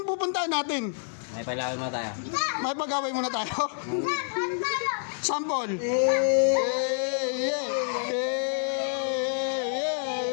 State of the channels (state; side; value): silent; right; 59 dB below the other